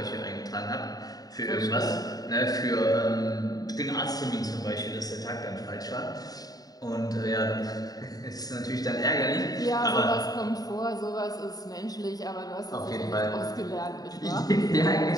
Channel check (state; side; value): late; right; 0.18 ms